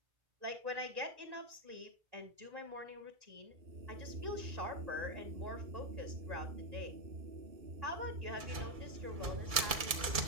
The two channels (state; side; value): late; left; 2.3 ms